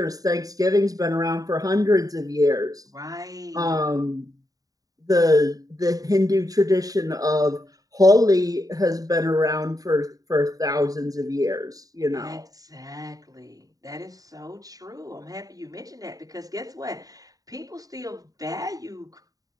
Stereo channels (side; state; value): left; late; 0.18 ms